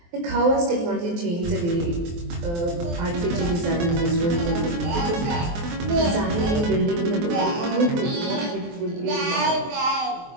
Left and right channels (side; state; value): left; late; 23 ms